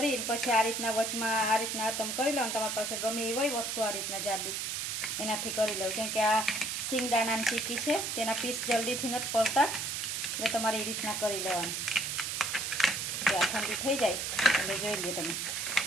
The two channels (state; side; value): noise; right; hiss, 2 dB below the sound